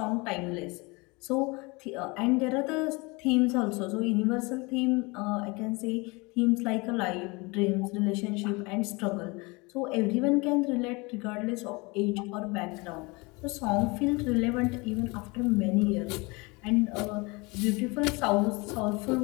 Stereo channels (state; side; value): quieter; right; 26.5 dB